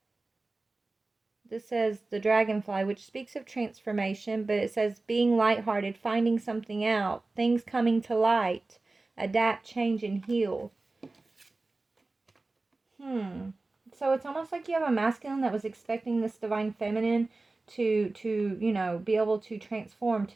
This says the dragonfly, which speaks of transformation, but it says being lighthearted, finding something out, things coming to light, adapt, change, and heal. So it's almost like you have a masculine that was expecting this divine feminine to you know, be able to transform,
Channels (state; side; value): quieter; left; 3.3 dB